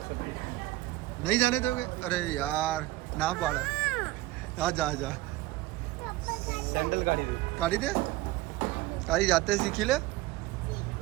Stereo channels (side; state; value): left; quieter; 17.7 dB